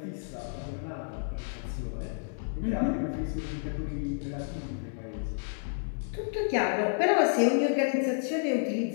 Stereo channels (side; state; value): right; silent; digital silence